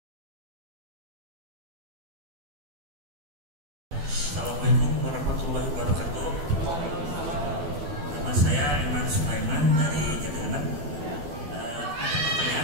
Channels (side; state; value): left; late; 12 ms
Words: Assalamualaikum warahmatullahi wabarakatuh. Nama saya Iman Sulaiman dari Jatinegara.